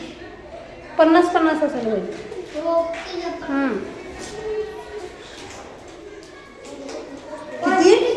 50-50 असेल होईल. किती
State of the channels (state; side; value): identical; both; correlation 1.00